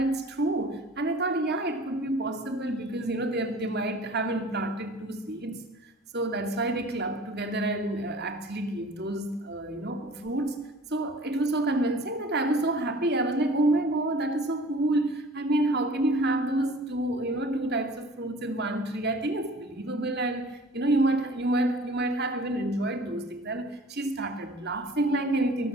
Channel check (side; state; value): both; normal; correlation 0.46